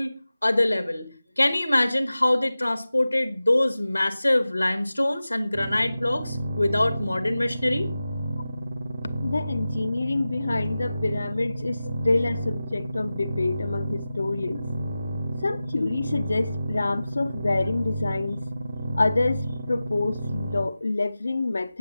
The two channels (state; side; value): inverted; both; correlation -0.95